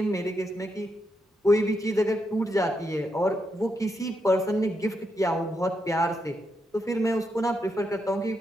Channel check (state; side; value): normal; both; correlation 0.82